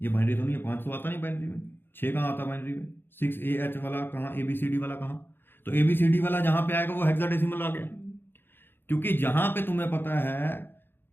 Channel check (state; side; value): late; right; 0.10 ms